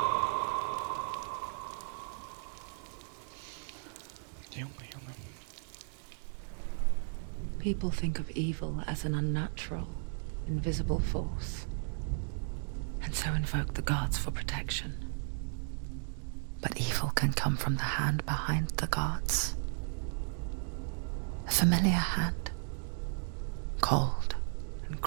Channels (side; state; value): left; silent; digital silence